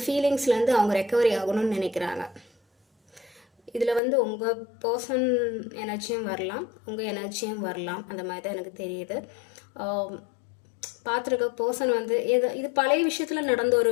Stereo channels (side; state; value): right; drops out; at 4.0 s